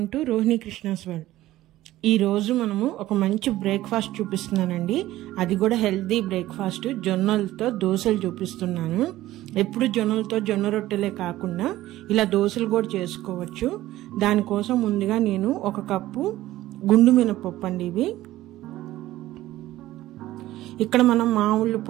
to Rohini Krishna's world. ఈరోజు మనము ఒక మంచి బ్రేక్ఫాస్ట్ చూపిస్తున్నానండి. అది కూడా హెల్తీ బ్రేక్ఫాస్ట్. జొన్నలతో దోశలు చూపిస్తున్నాను. ఎప్పుడు జొన్నలతో జొన్న రొట్టెలే కాకుండా ఇలా దోశలు కూడా చేసుకోవచ్చు. దానికోసం ముందుగా నేను 1 కప్పు గుండు మినపప్పు అండి. ఇవి ఇక్కడ మనం మామూలు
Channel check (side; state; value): left; quieter; 15.5 dB